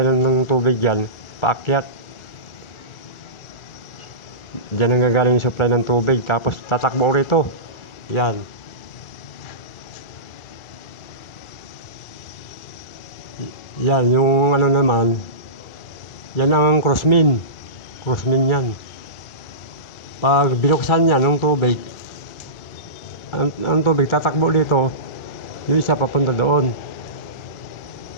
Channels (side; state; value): right; late; 1.4 ms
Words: ng tubig yan, paakyat. Diyan ang gagaling yung supply ng tubig, tapos tatakbo rito. Yan. Yan, yung ano naman, yan ang crossmin yan. Pag binuksan yan ng tubig, ang tubig tatakbo dito, yung isa papunta doon.